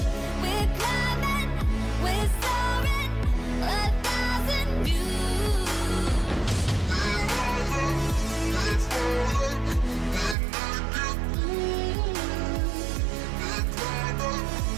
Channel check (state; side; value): drops out; left; at 10.4 s